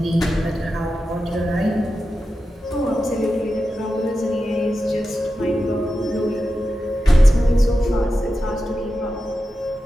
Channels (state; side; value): normal; both; correlation 0.91